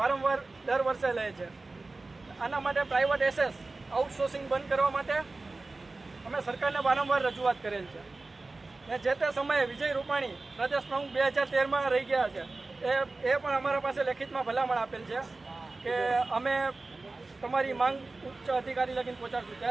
દર વર્ષે લે છે। આના માટે પ્રાઇવેટ એસએસ આઉટસોર્સિંગ બંધ કરવા માટે અમે સરકારને વારંવાર રજૂઆત કરેલ છે ને જે તે સમયે વિજય રૂપાણી પ્રદેશ પ્રમુખ 2013માં રહી ગયા છે। એ પણ અમારા પાસે લેખિતમાં ભલામણ આપેલ છે કે અમે તમારી માંગ ઉચ્ચ અધિકારી લગીને પહોંચાડશું।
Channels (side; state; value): left; quieter; 3.4 dB